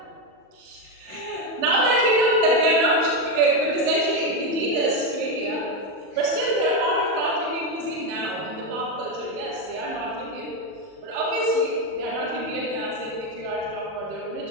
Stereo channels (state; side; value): late; left; 39 ms